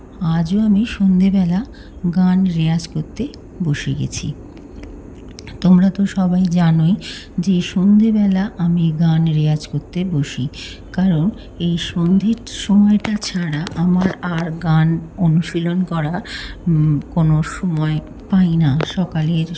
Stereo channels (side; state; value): both; identical; correlation 1.00